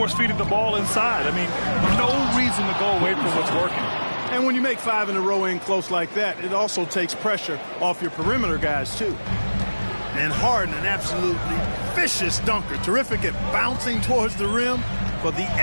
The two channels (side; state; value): both; inverted; correlation -1.00